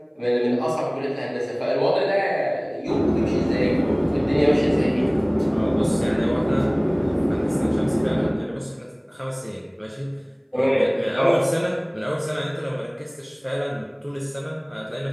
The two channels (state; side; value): identical; both; correlation 1.00